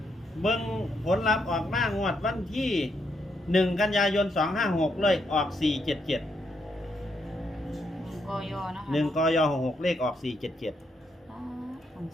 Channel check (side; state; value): both; normal; correlation 0.77